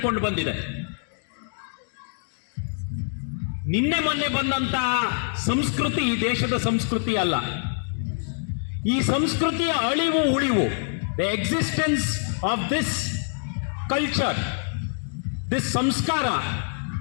ಬಂದಿದೆ. ನಿನ್ನೆ ಮೊನ್ನೆ ಬಂದಂತಹ ಸಂಸ್ಕೃತಿ ಈ ದೇಶದ ಸಂಸ್ಕೃತಿ ಅಲ್ಲ. ಈ ಸಂಸ್ಕೃತಿಯ ಅಳಿವು ಉಳಿವು, the existence of this culture, this ಸಂಸ್ಕಾರ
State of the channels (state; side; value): silent; right; digital silence